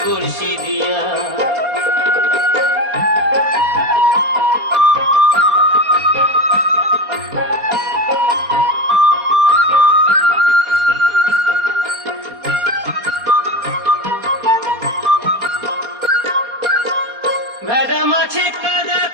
বড়শি দিয়া। ভেদা মাছে কাদা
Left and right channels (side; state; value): left; late; 4.3 ms